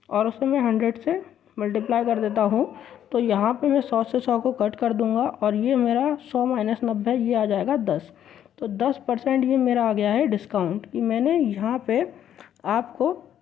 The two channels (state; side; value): quieter; right; 10.3 dB